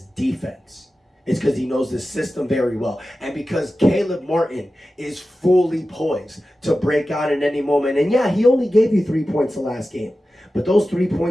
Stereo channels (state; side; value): normal; both; correlation 0.94